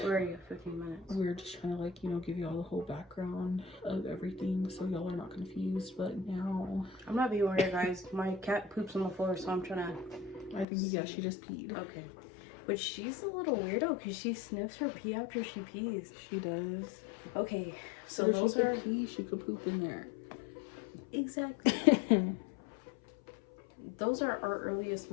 Where are you? 15 minutes. We were just trying to like, you know, give y'all the whole background of everything so y'all are not confused. But now I'm not being weird, guys. My cat poops on the floor, so I'm trying to... I think, yeah, she just peed. Okay. But she's a little weirdo because she sniffs her pee after she pees. She does. Okay, so if those she are... could pee, she could poop in there. Exactly. Those are our earliest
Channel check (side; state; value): right; drops out; at 10.7 s